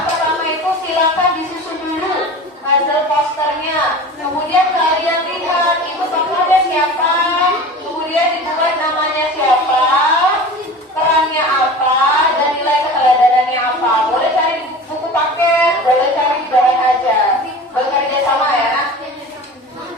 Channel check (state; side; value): normal; both; correlation 0.36